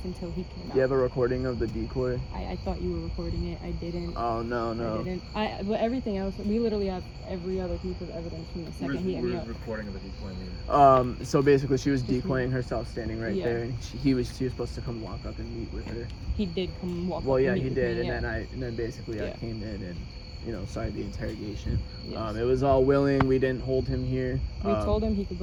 until he came out. Do you have a recording of the decoy? I thought you were recording it. I didn't. Oh no. I didn't. But everything else, we literally have every other piece of evidence from the second he hit me up. Recording of the decoy mean? So basically, she was decoying herself, standing right Yeah. there, and she was supposed to come walk up and meet with her. He did come walk. Well, up yeah, and he meet did, with me, and then basically I came in and, you know, started the interrogation. Yes. It was all willing. We didn't hold him here. We told him he could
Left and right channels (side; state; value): both; identical; correlation 1.00